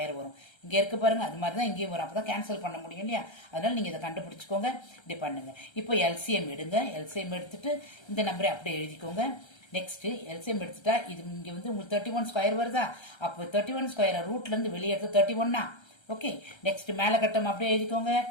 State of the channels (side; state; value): right; late; 1.3 ms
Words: வரும். இங்க இருக்கு பாருங்க, அது மாதிரி தான் இங்கேயும் வரும். அப்பதான் கேன்சல் பண்ண முடியும் இல்லையா? அதனால நீங்க இதை கண்டுபிடிச்சுக்கோங்க. இப்படி பண்ணுங்க. இப்போ எல்சிஎம் எடுங்க. எல்சிஎம் எடுத்துட்டு இந்த நம்பரை அப்படியே எழுதிக்கோங்க. நெக்ஸ்ட் எல்சிஎம் எடுத்துட்டா இது இங்க வந்து உங்களுக்கு 31 ஸ்கொயர் வருதா? அப்போ 31 ஸ்கொயர் ரூட்ல இருந்து வெளியே எடுத்து 31 ஓகே. நெக்ஸ்ட் மேல கட்டம் அப்படியே எழுதிக்கோங்க.